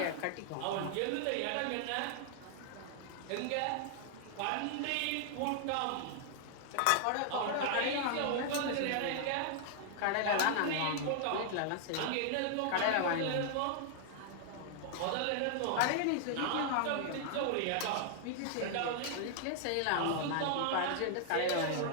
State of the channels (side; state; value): both; different; correlation -0.01